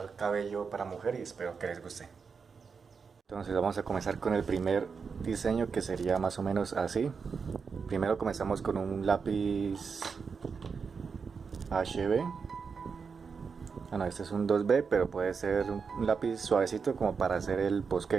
cabello para mujer y espero que les guste. Entonces vamos a comenzar con el primer diseño, que sería más o menos así. Primero comenzamos con un lápiz HB. Bueno, este es un 2B, pero puede ser un lápiz suavecito como para hacer el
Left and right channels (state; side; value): quieter; left; 5.6 dB